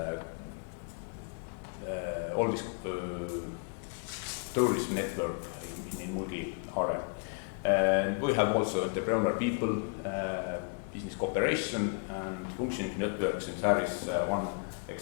tourism network in Mulgi area. And we have also entrepreneurial people, business cooperation and functioning networks, and there is one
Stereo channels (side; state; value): right; quieter; 38.0 dB